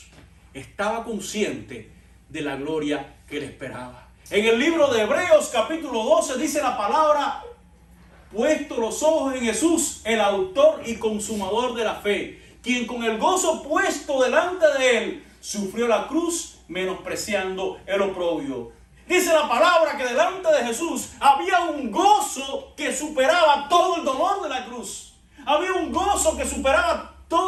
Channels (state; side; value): identical; both; correlation 1.00